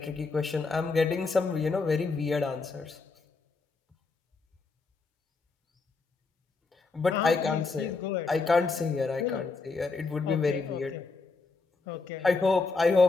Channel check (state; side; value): quieter; right; 4.2 dB